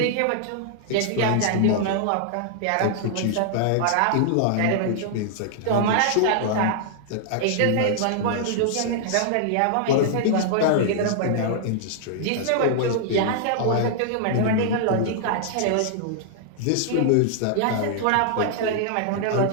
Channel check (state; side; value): different; both; correlation -0.01